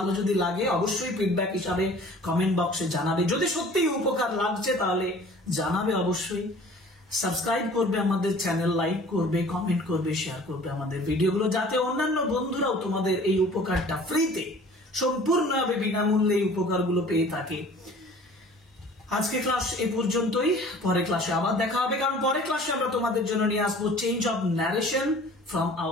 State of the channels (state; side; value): normal; both; correlation 0.48